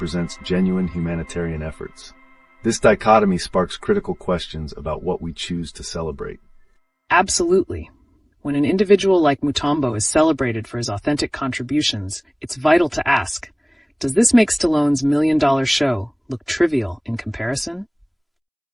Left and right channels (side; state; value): both; identical; correlation 1.00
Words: genuine humanitarian efforts. This dichotomy sparks critical questions about what we choose to celebrate. Absolutely. When an individual like Mutombo is celebrated for his authentic contributions, it's vital to ask, does this make Stallone's $1 million show look trivial in comparison?